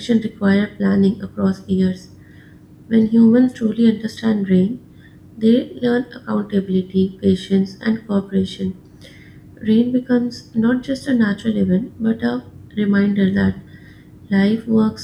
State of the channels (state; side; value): identical; both; correlation 1.00